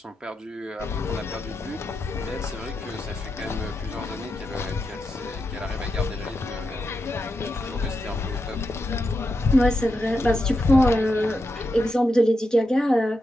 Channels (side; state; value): both; normal; correlation 0.86